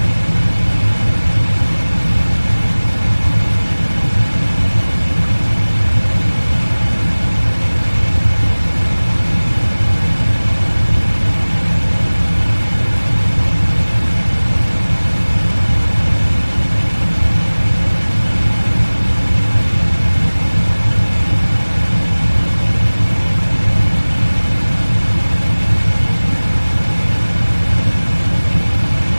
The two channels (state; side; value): inverted; both; correlation -1.00